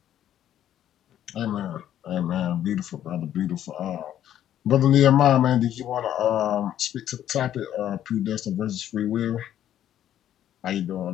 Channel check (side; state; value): right; quieter; 11.2 dB